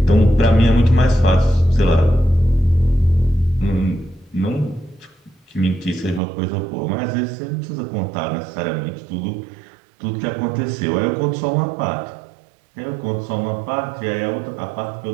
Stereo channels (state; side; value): drops out; left; at 6.2 s